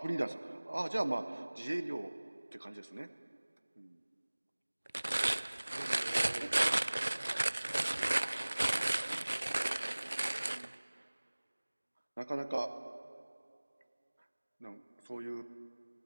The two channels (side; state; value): both; inverted; correlation -1.00